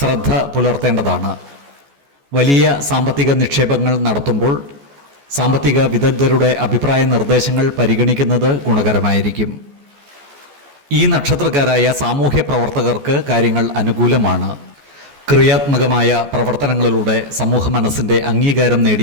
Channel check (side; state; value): left; late; 14 ms